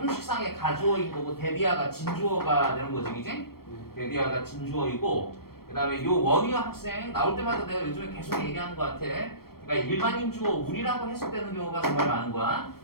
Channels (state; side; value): late; right; 0.94 ms